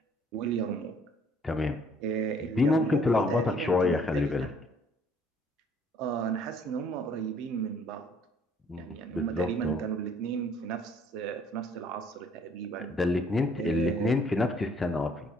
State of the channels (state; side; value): normal; both; correlation 0.61